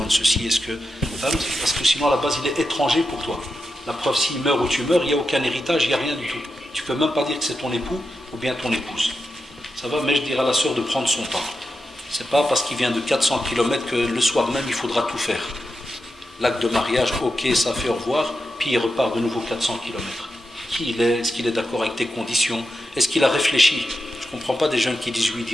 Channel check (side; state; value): both; normal; correlation 0.89